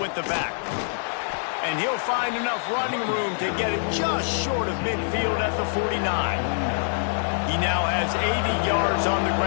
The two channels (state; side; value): silent; right; 62 dB below the other